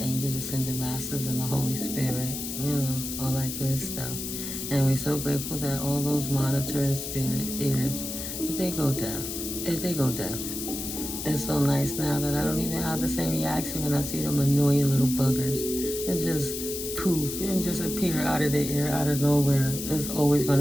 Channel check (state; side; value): noise; left; hiss, 6 dB below the sound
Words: ascended masters, and the Holy Spirit, all that good stuff. And we're so grateful that all those monitoring spirit ears, if they go deaf. It's so nice now that I don't even have the same reaction when I see them annoying little buggers and just poof and just appear out of the air, out of nowhere. It's always going